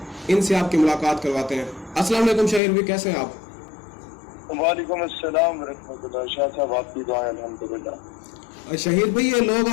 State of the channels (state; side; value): drops out; right; at 2.6 s